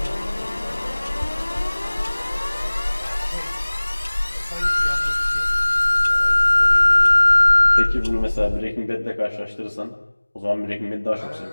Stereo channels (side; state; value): both; inverted; correlation -1.00